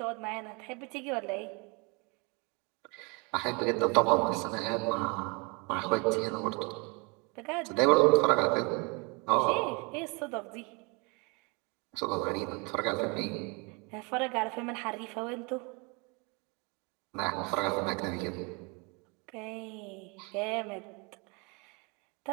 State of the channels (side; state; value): left; quieter; 30.6 dB